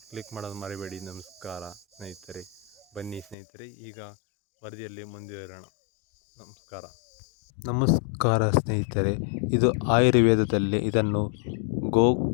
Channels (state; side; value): drops out; right; at 3.4 s